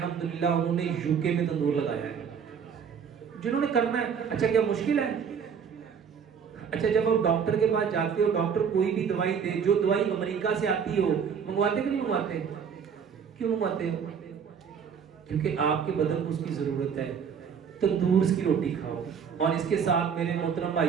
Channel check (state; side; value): quieter; left; 7.0 dB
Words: उन्होंने यूके में तंदूर लगाया है। जिन्होंने करना है, अच्छा क्या मुश्किल है? अच्छा जब आप डॉक्टर के पास जाते हो, डॉक्टर कोई भी दवाई दे, जो दवाई अमेरिका से आती हो, मंगवाते कि नहीं मंगवाते? क्यों मंगवाते हो? क्योंकि आपके बदन को उसकी जरूरत है। तंदूर की रोटी खाओ, और इसके साथ मेरे मोहतरम